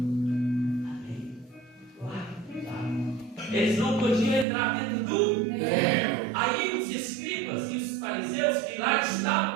eles não podiam entrar dentro do Aí os escribas e os fariseus que lá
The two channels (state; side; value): drops out; left; at 4.5 s